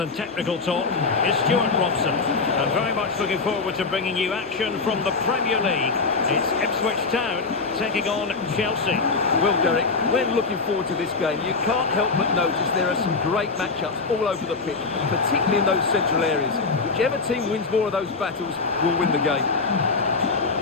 technical talk, is Stuart Robson. I'm very much looking forward to bringing you action from the Premier League. It's Ipswich Town taking on Chelsea. Well, Derek, we're looking forward to this game. You can't help but notice there are some great matchups all over the pitch, particularly in those central areas. Whichever team wins more of those battles will win the game.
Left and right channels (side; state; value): right; quieter; 4.3 dB